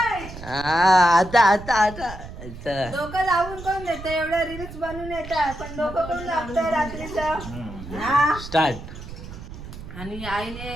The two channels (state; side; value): noise; right; rumble, 12 dB below the sound